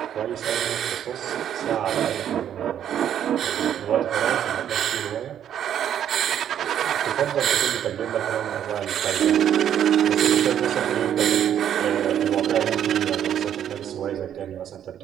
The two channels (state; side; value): quieter; left; 9.9 dB